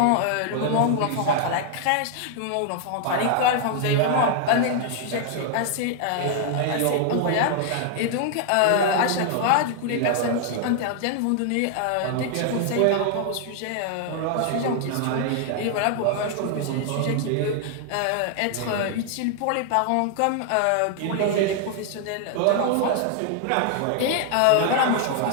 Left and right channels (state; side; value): different; both; correlation 0.00